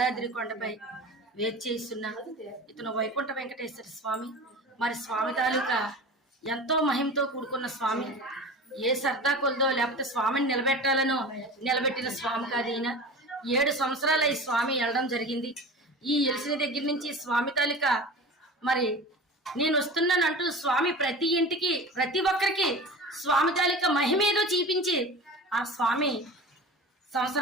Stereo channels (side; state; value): both; normal; correlation 0.34